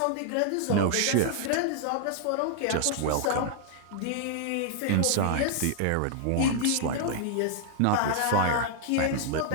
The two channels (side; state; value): both; different; correlation 0.00